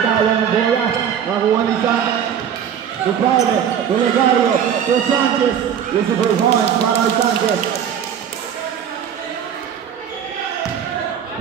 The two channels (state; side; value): quieter; left; 8.6 dB